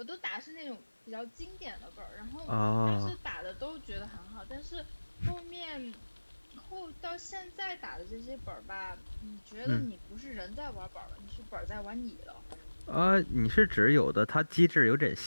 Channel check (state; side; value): inverted; both; correlation -1.00